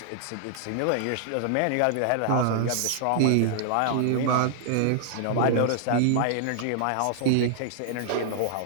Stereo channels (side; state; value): both; different; correlation -0.01